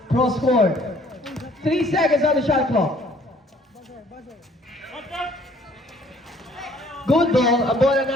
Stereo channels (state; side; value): normal; both; correlation 0.59